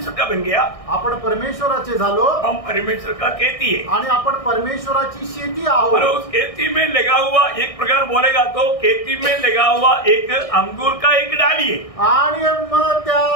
का बन गया. आपण परमेश्वराचे झालो. हम परमेश्वर का खेती है. आणि आपण परमेश्वराची शेती आहोत. और उस खेती में लगा हुआ एक प्रकार बोलेगा तो खेती में लगा हुआ एक अंगूर का एक डाली है. आणि मग त्या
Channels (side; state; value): right; late; 1.6 ms